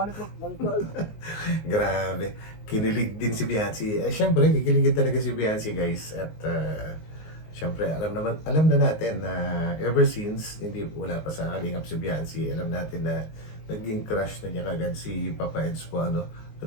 Grabe. Kinilig din si Beyonce. Siyempre, kikiligin talaga si Beyonce guys. At Siyempre, alam na natin na ever since, hindi wala pa sa Kalingap si Biancy, alam natin na naging crush na niya kagad si Papa Eds po, ano.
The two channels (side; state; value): right; late; 19 ms